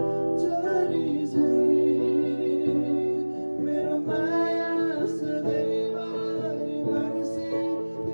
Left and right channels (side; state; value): both; inverted; correlation -1.00